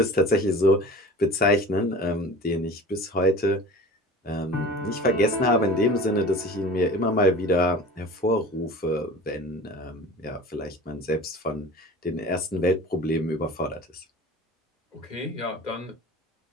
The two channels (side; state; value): both; normal; correlation 0.39